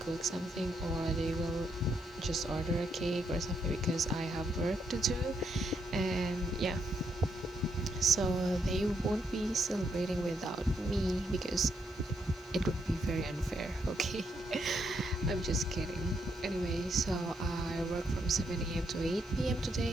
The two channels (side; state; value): left; noise; hiss, 30 dB below the sound